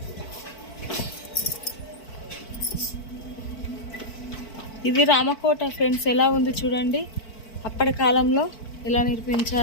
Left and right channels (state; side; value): late; right; 4.5 ms